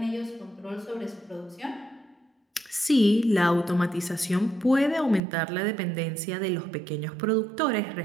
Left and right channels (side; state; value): left; drops out; at 5.2 s